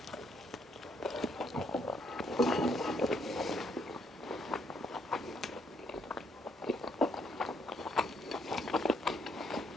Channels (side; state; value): both; normal; correlation 0.72